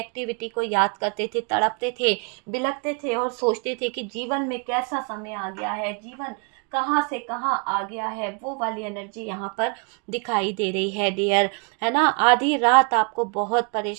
को याद करते थे, तड़पते थे, बिलखते थे और सोचते थे कि जीवन में कैसा समय आ गया है, जीवन कहाँ से कहाँ आ गया है। वो वाली एनर्जी यहाँ पर दिखाई दे रही है डियर, है ना। आधी रात आपको बहुत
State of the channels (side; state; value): left; quieter; 37.3 dB